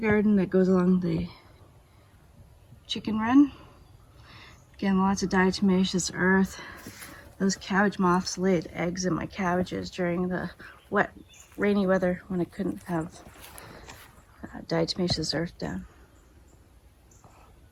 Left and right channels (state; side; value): identical; both; correlation 1.00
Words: that goes along the chicken run. Again, lots of diatomaceous earth. Those cabbage moths laid eggs in my cabbages during the wet, rainy weather when I couldn't have diatomaceous earth down.